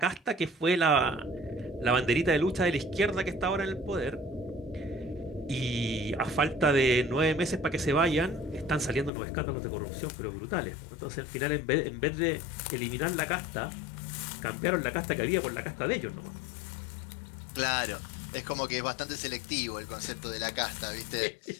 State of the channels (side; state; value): right; drops out; at 9.1 s